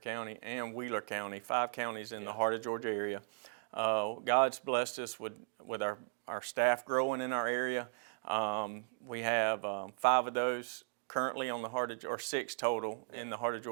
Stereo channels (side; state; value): left; silent; digital silence